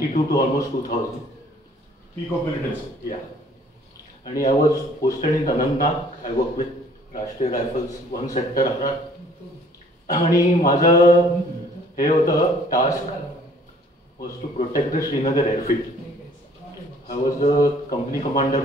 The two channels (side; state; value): both; normal; correlation 0.57